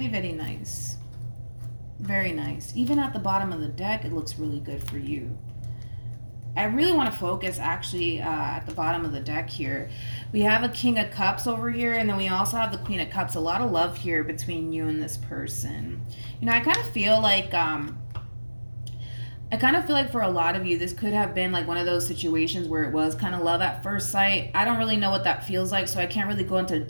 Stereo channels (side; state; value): both; inverted; correlation -1.00